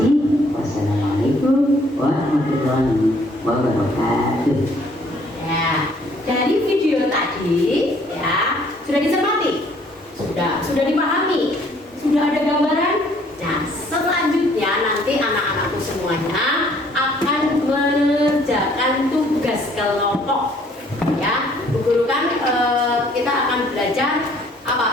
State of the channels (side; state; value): both; normal; correlation 0.61